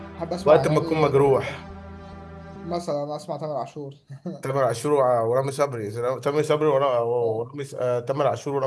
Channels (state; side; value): identical; both; correlation 1.00